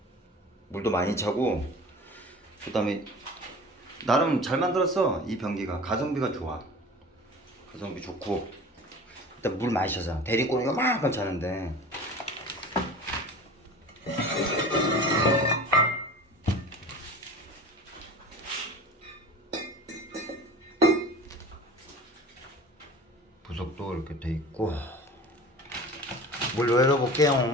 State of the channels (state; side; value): normal; both; correlation 0.38